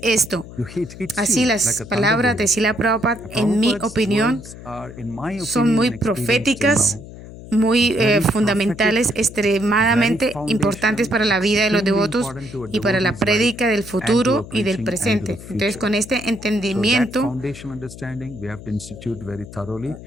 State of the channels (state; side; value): noise; left; hum, 15 dB below the sound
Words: esto. Así las palabras de Srila Prabhupada, en mi opinión, son muy proféticas, muy fundamentales, extremadamente importantes para la vida de los devotos y para la prédica del futuro y del presente. Entonces, con este entendimiento,